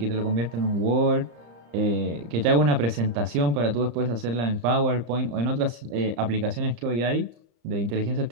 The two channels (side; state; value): left; late; 35 ms